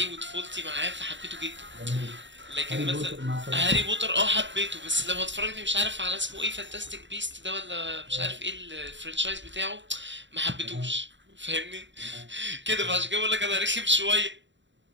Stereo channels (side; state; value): left; late; 0.54 ms